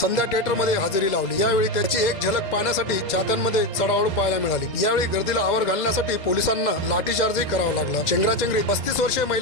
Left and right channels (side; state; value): right; late; 2.0 ms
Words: संध्या थिएटर मध्ये हजेरी लावली. यावेळी त्याची एक झलक पाहण्यासाठी चाहत्यांमध्ये चढाओढ पाहायला मिळाली. यावेळी गर्दीला आवर घालण्यासाठी पोलिसांना लाठीचार्जही करावा लागला. चेंगराचेंगरीत 35 वर्षीय